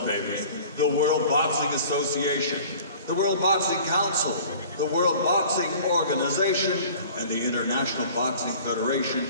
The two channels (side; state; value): both; inverted; correlation -0.46